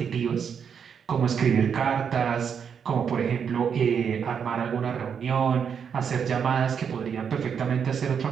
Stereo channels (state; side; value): quieter; left; 7.2 dB